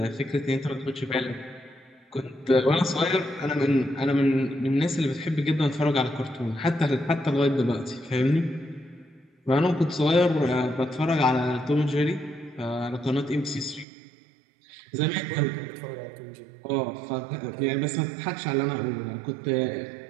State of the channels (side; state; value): left; drops out; at 13.9 s